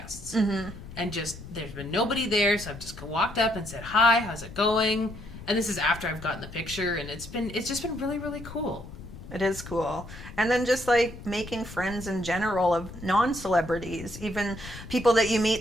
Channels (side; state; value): left; noise; rumble, 14 dB below the sound